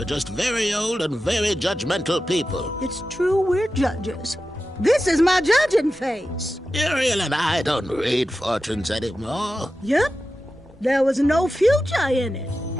just very old and very judgmental people. It's true, we're judges. This is my judging face. Ariel and I don't read fortunes anymore. Yep. There was no future in it.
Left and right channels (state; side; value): normal; both; correlation 0.92